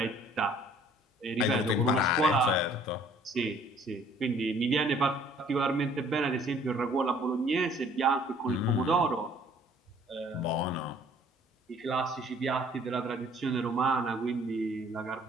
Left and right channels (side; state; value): both; normal; correlation 0.57